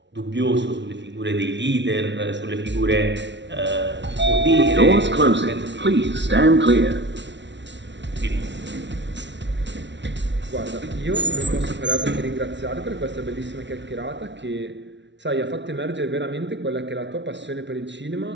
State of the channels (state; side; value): late; left; 0.52 ms